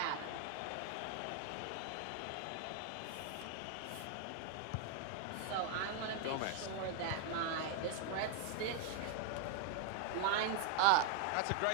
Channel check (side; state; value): both; different; correlation 0.01